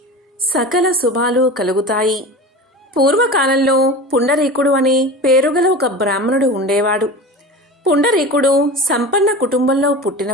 సకల శుభాలు కలుగుతాయి. పూర్వకాలంలో పుండరీకుడు అనే పేరుగల ఒక బ్రాహ్మణుడు ఉండేవాడు. పుండరీకుడు సంపన్న కుటుంబంలో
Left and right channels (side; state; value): both; normal; correlation 0.32